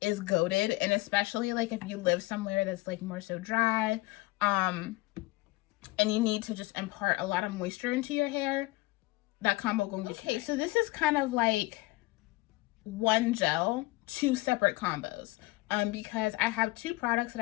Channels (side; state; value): right; quieter; 21.4 dB